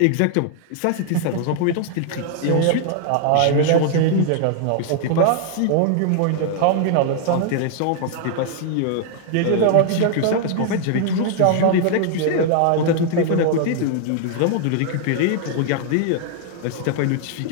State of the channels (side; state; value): both; different; correlation 0.00